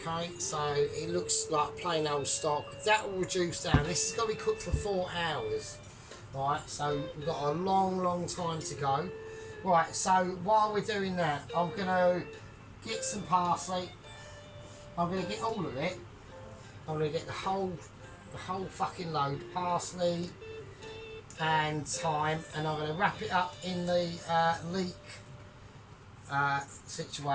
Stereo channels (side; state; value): both; identical; correlation 1.00